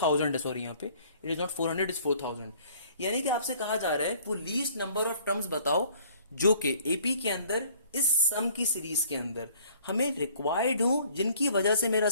है। सॉरी यहाँ पे इट इज नॉट 400, इज 4000। यानी कि आपसे कहा जा रहा है वो लीस्ट नंबर ऑफ टर्म्स बताओ जो कि एपी के अंदर इस सम की सीरीज के अंदर हमें रिक्वायर्ड हो जिनकी वजह से मेरा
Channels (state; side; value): inverted; both; correlation -0.57